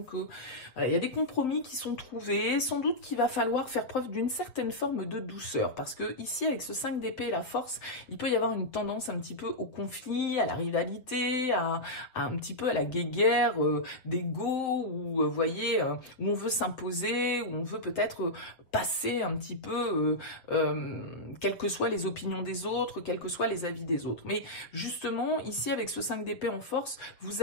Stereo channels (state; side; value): late; right; 7.4 ms